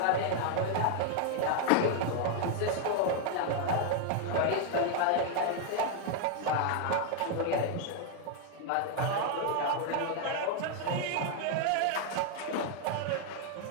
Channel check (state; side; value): different; both; correlation 0.00